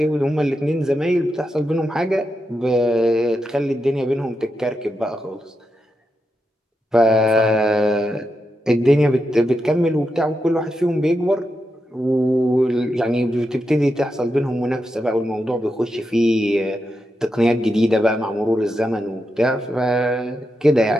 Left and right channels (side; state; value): both; normal; correlation 0.86